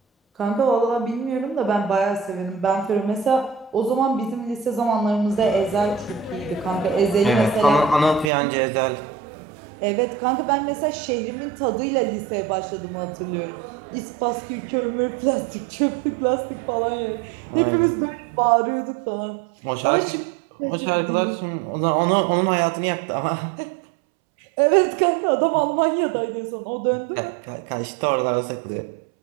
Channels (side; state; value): left; drops out; at 8.3 s